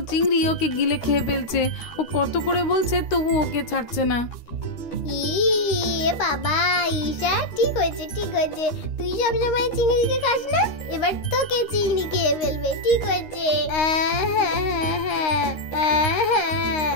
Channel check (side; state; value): right; late; 13 ms